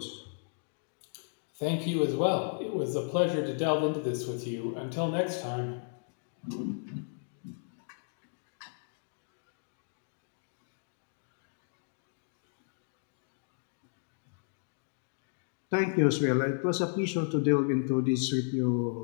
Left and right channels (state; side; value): silent; right; digital silence